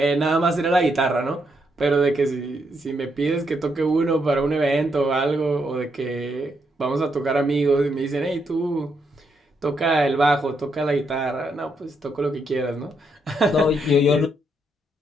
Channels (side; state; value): both; normal; correlation 0.78